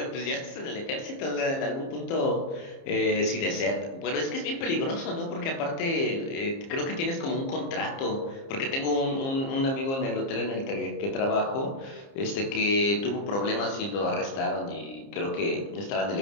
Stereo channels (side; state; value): right; late; 30 ms